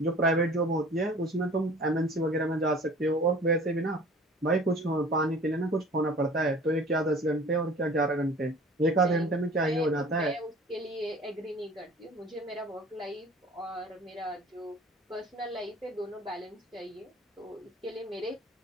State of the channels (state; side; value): normal; both; correlation 0.46